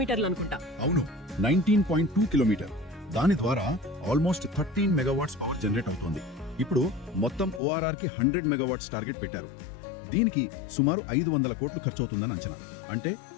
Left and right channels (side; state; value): right; drops out; at 7.6 s